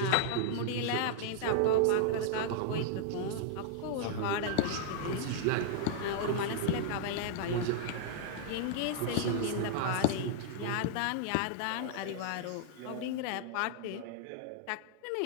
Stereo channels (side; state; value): both; different; correlation -0.01